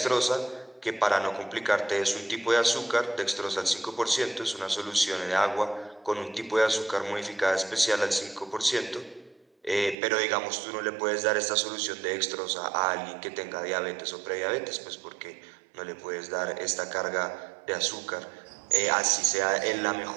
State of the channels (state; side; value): drops out; left; at 10.0 s